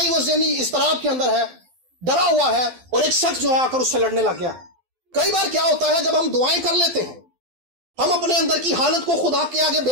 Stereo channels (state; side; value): late; left; 12 ms